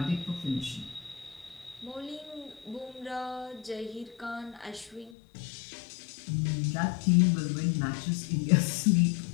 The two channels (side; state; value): right; drops out; at 5.1 s